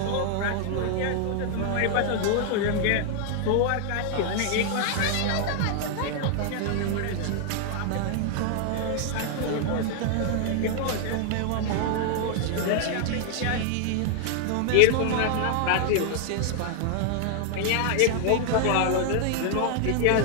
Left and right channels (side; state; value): both; different; correlation 0.00